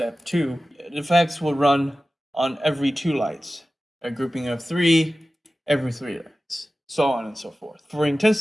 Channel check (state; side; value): normal; both; correlation 0.95